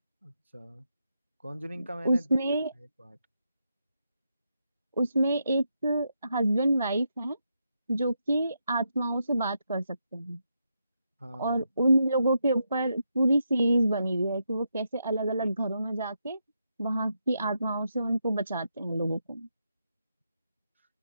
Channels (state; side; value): inverted; both; correlation -0.82